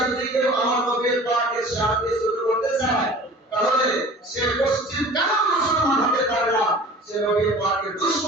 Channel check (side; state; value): both; normal; correlation 0.43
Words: যদি কেউ আমার নবীর পাকের সাথে ছোট করতে চায় তাহলে সে পশ্চিম কেন মুসলমান হতে পারে না সে নবীর পাকের